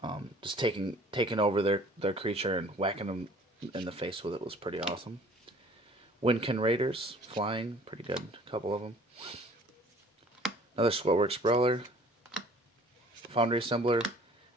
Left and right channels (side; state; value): both; normal; correlation 0.52